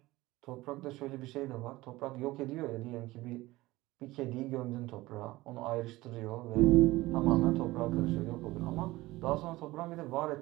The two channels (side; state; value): left; quieter; 19.1 dB